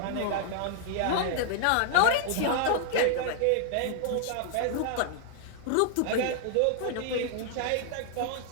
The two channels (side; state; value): both; different; correlation 0.00